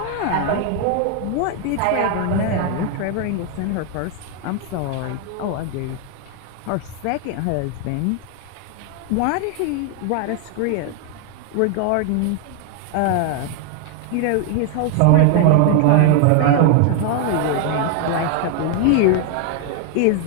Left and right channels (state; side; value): different; both; correlation 0.00